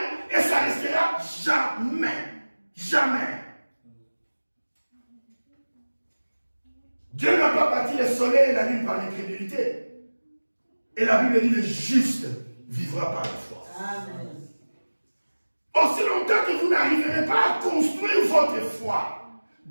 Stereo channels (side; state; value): both; inverted; correlation -1.00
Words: et ça restera jamais. Jamais. Dieu n'a pas bâti le soleil et la lune par l'incrédulité. Et la Bible dit le juste vivra par la foi. Amen. Aussi longtemps que vous n'arriverez pas à construire votre foi,